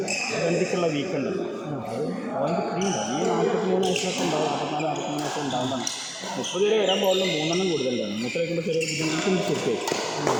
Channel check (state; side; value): identical; both; correlation 1.00